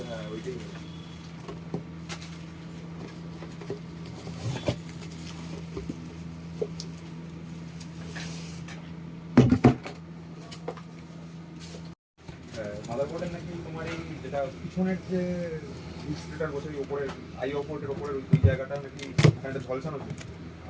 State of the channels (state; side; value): identical; both; correlation 1.00